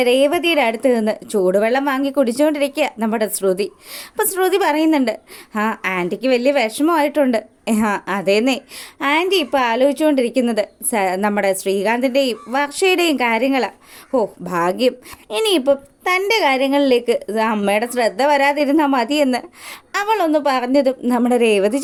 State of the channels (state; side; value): identical; both; correlation 1.00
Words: രേവതിയുടെ അടുത്ത് നിന്ന് ചൂടുവെള്ളം വാങ്ങി കുടിച്ചുകൊണ്ടിരിക്കുക നമ്മുടെ ശ്രുതി. അപ്പോൾ ശ്രുതി പറയുന്നുണ്ട്, ആൻറ്റിക്ക് വലിയ വിഷമമായിട്ടുണ്ട്. അതേന്നേ, ആൻറ്റി ഇപ്പോൾ ആലോചിച്ചുകൊണ്ടിരിക്കുന്നത് നമ്മുടെ ശ്രീകാന്തിൻ്റെയും വർഷയുടെയും കാര്യങ്ങളാണ്. ഭാഗ്യം, ഇനിയിപ്പം തൻ്റെ കാര്യങ്ങളിലേക്ക് അമ്മയുടെ ശ്രദ്ധ വരാതിരുന്നാൽ മതിയെന്ന് അവളൊന്ന് പറഞ്ഞതും നമ്മുടെ രേവതി